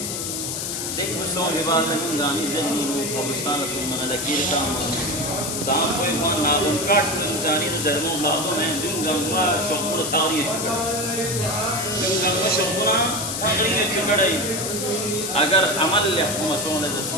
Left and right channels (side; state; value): left; noise; hiss, 3 dB below the sound